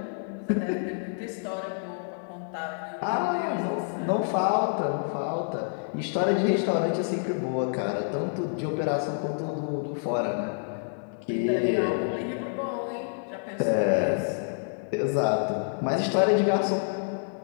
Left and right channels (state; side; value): silent; right; digital silence